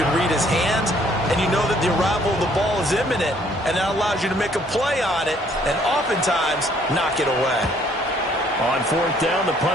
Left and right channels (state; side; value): normal; both; correlation 0.63